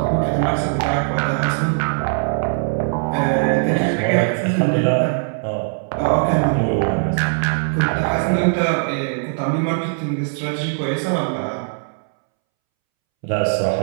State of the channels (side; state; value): left; silent; 65 dB below the other